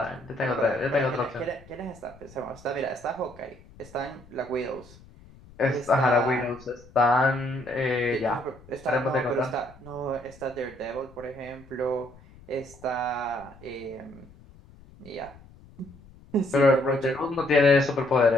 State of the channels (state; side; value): noise; left; rumble, 23 dB below the sound